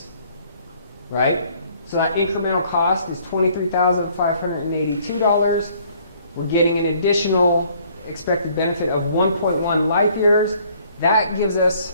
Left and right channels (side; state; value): both; inverted; correlation -0.61